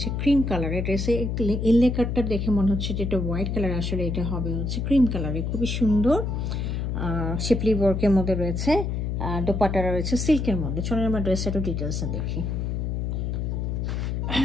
ক্রিম কালারের। ড্রেসে ইনলে কাটটা দেখে মনে হচ্ছে যে এটা হোয়াইট কালার, আসলে এটা হবে হচ্ছে ক্রিম কালারে। খুবই সুন্দর শিপলি ওয়ার্কের মধ্যে রয়েছে। দোপাট্টাটা রয়েছে সিল্কের মধ্যে। চলুন আমরা ড্রেসটা একটু ডিটেলসে দেখি।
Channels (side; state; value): left; noise; hum, 1 dB below the sound